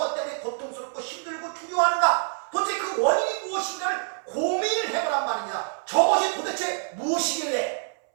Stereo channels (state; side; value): silent; left; 60 dB below the other